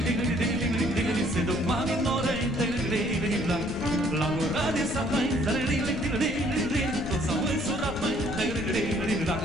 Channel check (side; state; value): left; noise; rumble, 10 dB below the sound